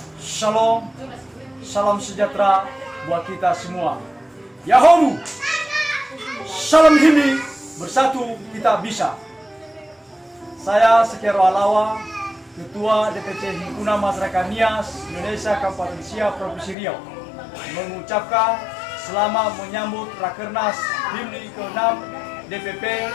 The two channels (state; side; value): drops out; right; at 16.8 s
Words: Shalom, salam sejahtera buat kita semua. Yahoo! Salam Himni, bersatu kita bisa. Saya Sekero Alawa, Ketua DPC Himpunan Masyarakat Nias Indonesia Kabupaten Siak Provinsi Riau, mengucapkan selamat menyambut Rakernas Himni ke-6 DPP